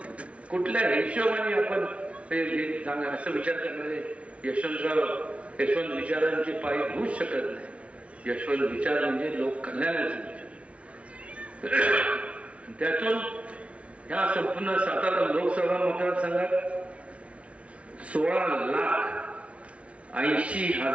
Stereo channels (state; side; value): late; left; 0.063 ms